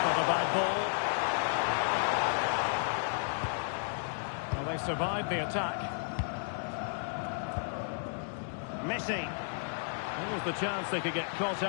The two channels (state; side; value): silent; right; digital silence